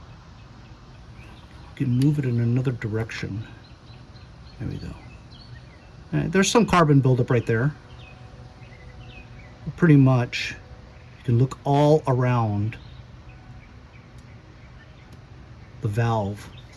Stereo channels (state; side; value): identical; both; correlation 1.00